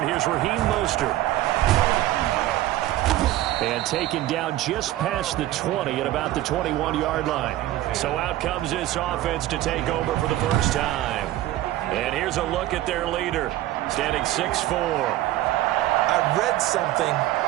Here's Raheem Mostert. And taken down just past the 20 at about the 21-yard line. So out comes this offense to take over for the first time. And here's a look at their leader, standing 6'4". I read something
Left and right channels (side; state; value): left; quieter; 15.1 dB